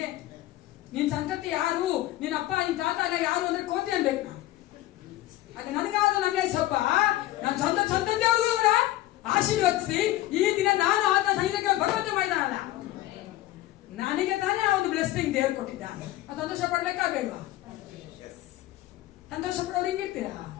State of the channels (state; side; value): quieter; right; 15.7 dB